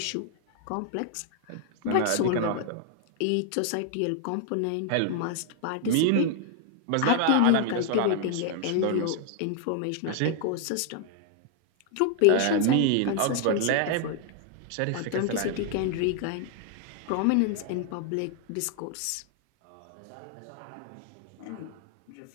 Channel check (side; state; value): both; different; correlation 0.00